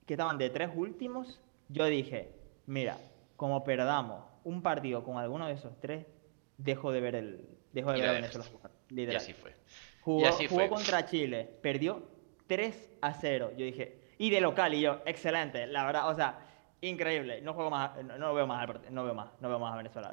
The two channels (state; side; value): silent; left; digital silence